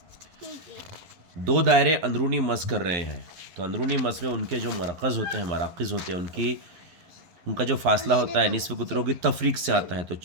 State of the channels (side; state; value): left; late; 11 ms